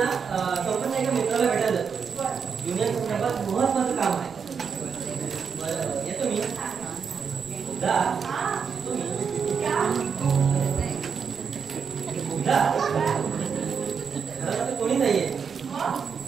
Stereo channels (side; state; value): left; quieter; 6.3 dB